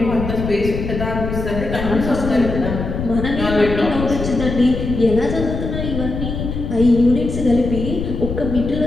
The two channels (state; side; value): noise; left; rumble, 5 dB below the sound